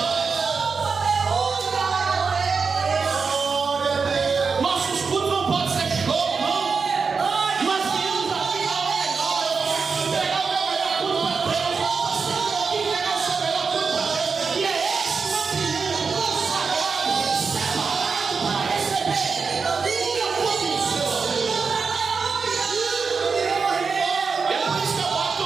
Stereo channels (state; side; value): quieter; left; 5.1 dB